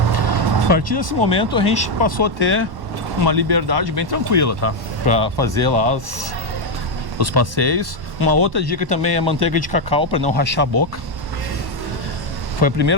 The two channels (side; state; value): left; late; 1.1 ms